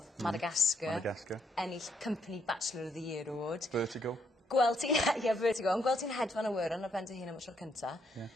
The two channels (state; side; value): normal; both; correlation 0.74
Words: Madagascar. Ennill Company Bachelor of the Year Award. Vertigo. Gweld ti'n, Vertigo, ond gweld ti'n hedfan y wyr yn y ben dy hun am y tro cynta.